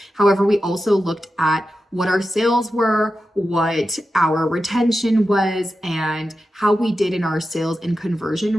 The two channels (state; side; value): normal; both; correlation 0.91